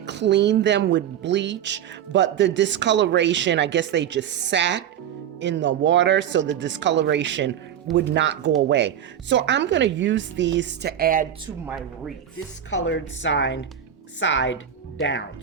clean them with bleach, but the discoloration, I guess they just sat in the water, so the discoloration would not go away. So I'm going to use these to add to my wreath, discolored side down.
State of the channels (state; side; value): quieter; left; 9.6 dB